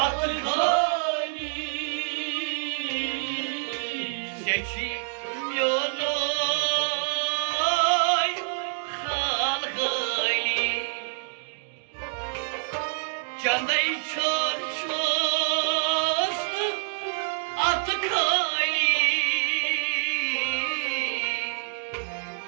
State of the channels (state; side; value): silent; left; digital silence